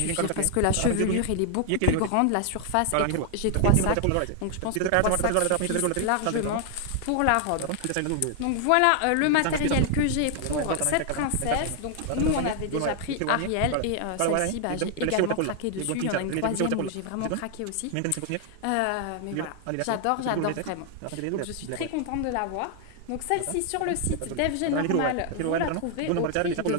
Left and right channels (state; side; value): different; both; correlation 0.00